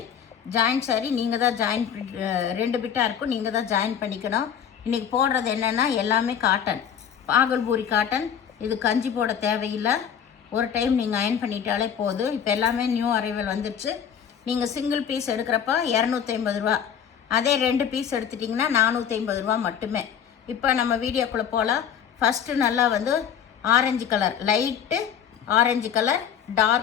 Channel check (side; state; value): right; quieter; 8.3 dB